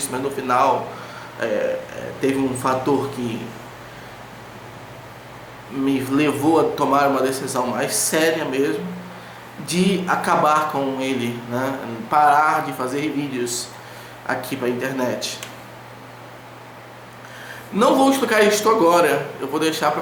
mas no final teve um fator que me levou a tomar uma decisão mais séria mesmo, de acabar com ele, né? Parar de fazer vídeos aqui para a internet. Não vou explicar isso agora, eu vou deixar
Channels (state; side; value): identical; both; correlation 1.00